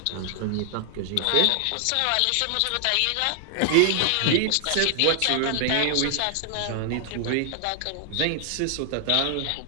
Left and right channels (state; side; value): different; both; correlation 0.00